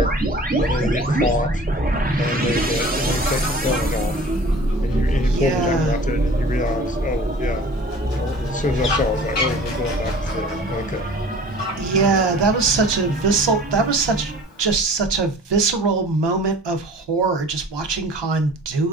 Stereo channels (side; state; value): both; normal; correlation 0.45